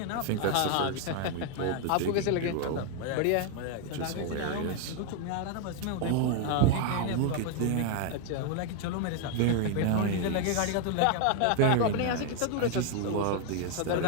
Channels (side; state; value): both; different; correlation 0.00